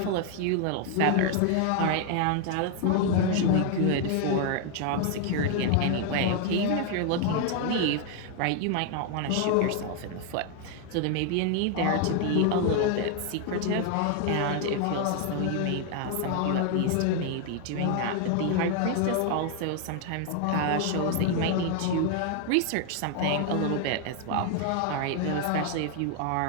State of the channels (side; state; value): both; different; correlation 0.00